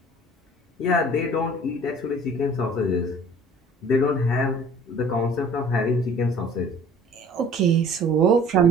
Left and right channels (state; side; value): normal; both; correlation 0.49